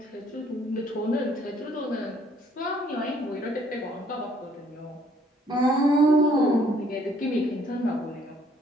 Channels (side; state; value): both; normal; correlation 0.64